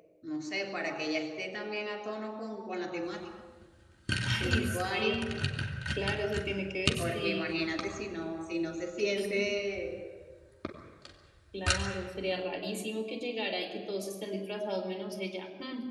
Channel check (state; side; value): identical; both; correlation 1.00